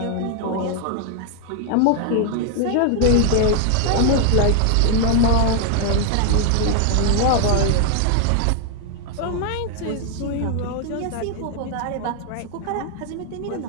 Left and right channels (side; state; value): both; different; correlation 0.00